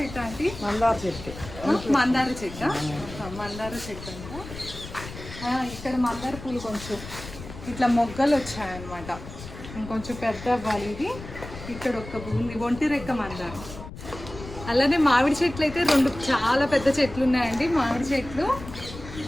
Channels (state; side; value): noise; left; rumble, 13 dB below the sound